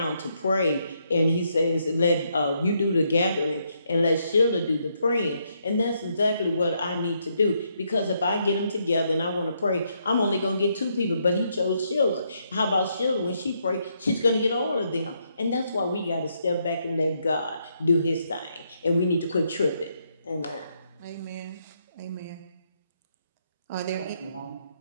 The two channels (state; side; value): inverted; both; correlation -0.76